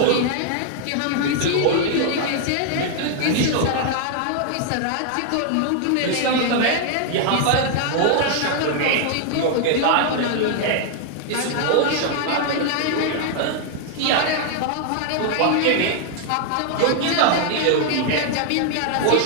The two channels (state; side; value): different; both; correlation 0.00